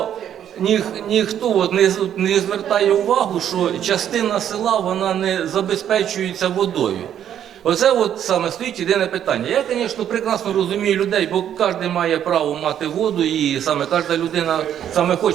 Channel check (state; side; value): quieter; left; 9.9 dB